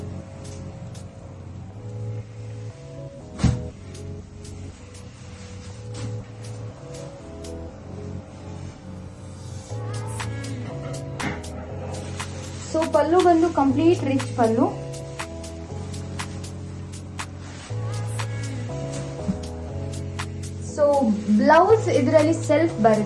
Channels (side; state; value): both; identical; correlation 1.00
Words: So pallu ಬಂದು complete rich pallu. So blouse ಇದರಲ್ಲಿ ಸೆಲ್ಫ್